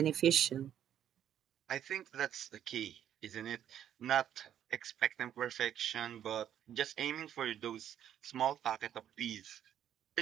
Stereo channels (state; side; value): quieter; left; 10.2 dB